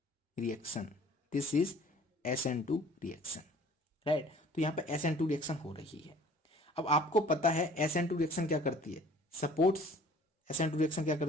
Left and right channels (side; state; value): both; normal; correlation 0.51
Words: reaction, this is SN2 reaction, right. तो यहाँ पे SN2 रिएक्शन हो रही है। अब आपको पता है SN2 रिएक्शन क्या करती है, सपोर्ट्स, SN2 रिएक्शन क्या